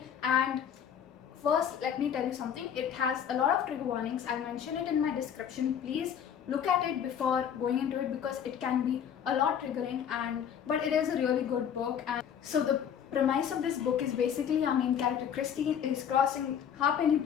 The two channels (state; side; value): quieter; right; 8.6 dB